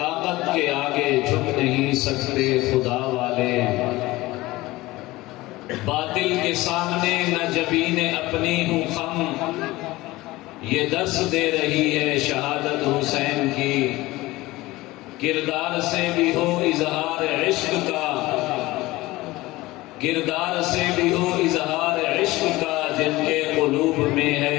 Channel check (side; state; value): right; quieter; 19.3 dB